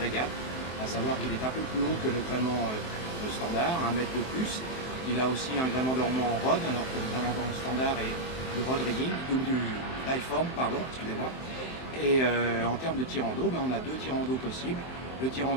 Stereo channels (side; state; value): right; late; 23 ms